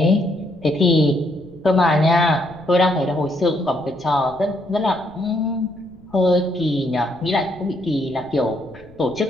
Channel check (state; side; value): noise; left; rumble, 25 dB below the sound